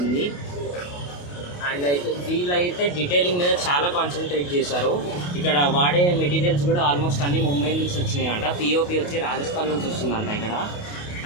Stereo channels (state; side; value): late; right; 28 ms